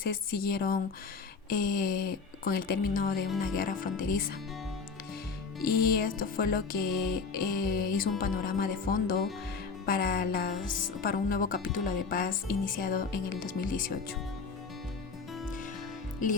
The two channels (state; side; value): quieter; right; 5.1 dB